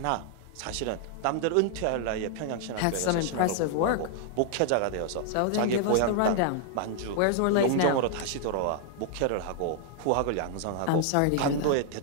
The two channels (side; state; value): both; different; correlation 0.00